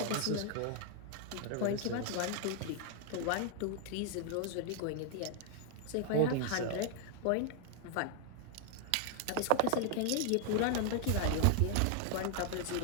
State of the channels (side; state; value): both; different; correlation 0.00